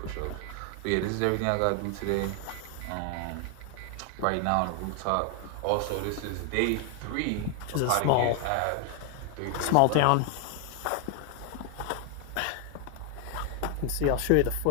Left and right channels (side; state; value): both; different; correlation 0.00